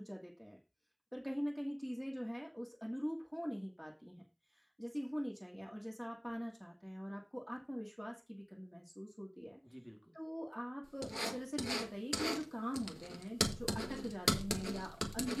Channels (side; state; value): both; identical; correlation 1.00